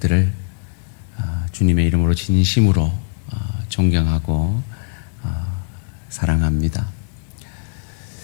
주님의 이름으로 진심으로 존경하고 사랑합니다.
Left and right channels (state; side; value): silent; right; 57 dB below the other